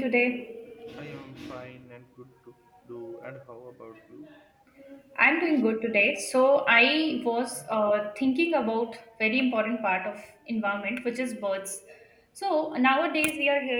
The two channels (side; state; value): both; identical; correlation 1.00